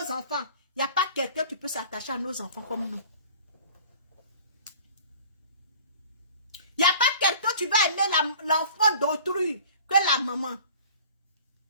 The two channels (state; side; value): inverted; both; correlation -0.45